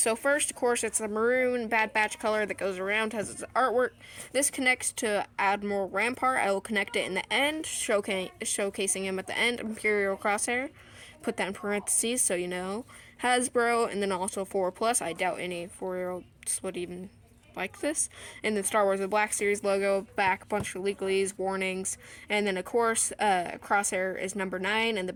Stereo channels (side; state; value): both; identical; correlation 1.00